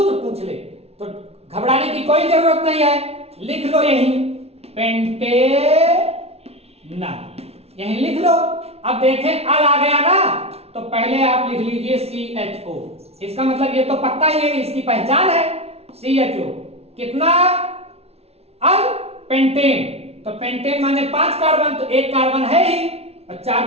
पूछ ले, तो घबराने की कोई जरूरत नहीं है। लिख लो यही पेंटेनल, यही लिख लो। अब देखें अल आ गया ना, तो पहले आप लिख लीजिए CHO। इसका मतलब ये तो पक्का ही है, इसकी पहचान है CHO। कितना अल? पेंटेन। तो पेंटेन माने 5 कार्बन, तो 1 कार्बन है ही और 4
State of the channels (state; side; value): late; left; 0.30 ms